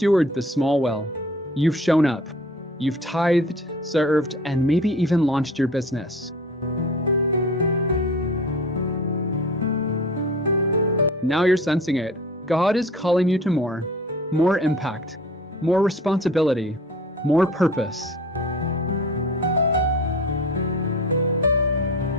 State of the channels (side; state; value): both; normal; correlation 0.41